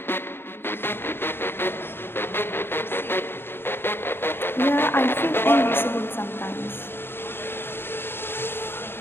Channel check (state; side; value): late; right; 0.11 ms